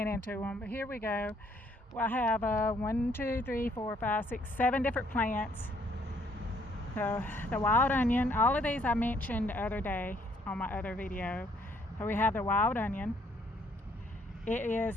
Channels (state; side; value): normal; both; correlation 0.67